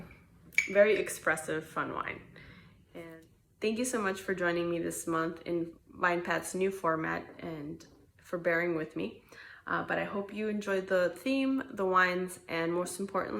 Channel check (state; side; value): identical; both; correlation 1.00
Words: very expressive, fun wine. And thank you so much for joining me this month in VinePath's new format, and for bearing with me. But I hope you enjoyed the theme, the wines, and most